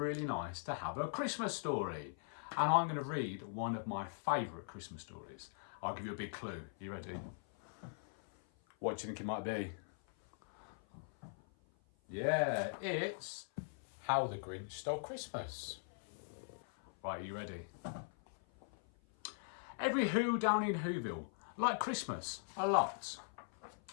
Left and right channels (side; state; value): right; silent; 50 dB below the other